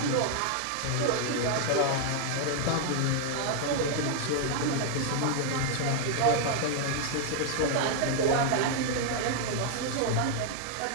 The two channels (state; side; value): different; both; correlation 0.00